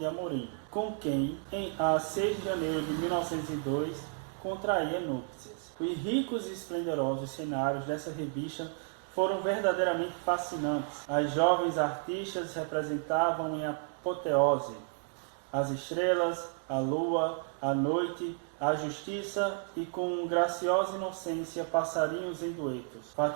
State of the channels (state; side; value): silent; left; 56 dB below the other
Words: Amorim, com quem, a 6 de janeiro de 1902, contraía núpcias. Os ricos e esplendorosos cenários dessa revista foram verdadeiramente fascinantes. As jovens artistas representavam em apoteose as estrelas, a lua, a noite, a justiça e com graciosa inocência passarinhos em duetos.